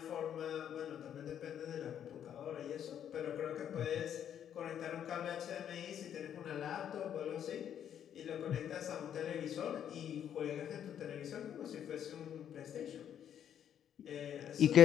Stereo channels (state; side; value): quieter; right; 9.5 dB